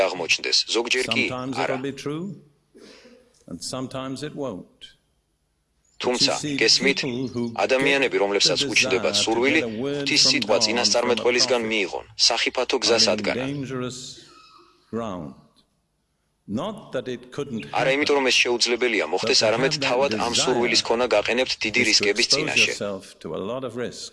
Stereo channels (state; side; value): identical; both; correlation 1.00